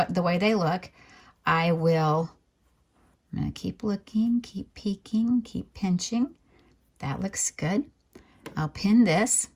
the way they look. I'm going to keep looking, keep peeking, keep pinching. That looks good. I'll pin this.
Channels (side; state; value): both; identical; correlation 1.00